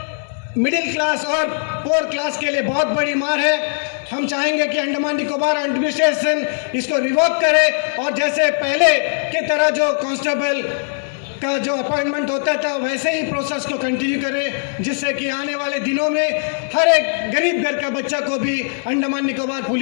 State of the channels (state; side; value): silent; right; digital silence